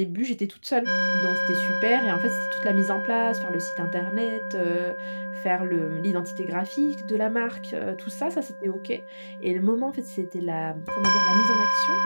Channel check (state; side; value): inverted; both; correlation -1.00